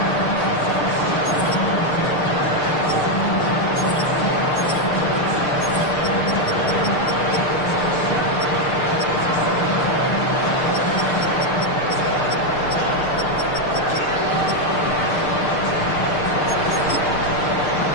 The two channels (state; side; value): late; right; 6.6 ms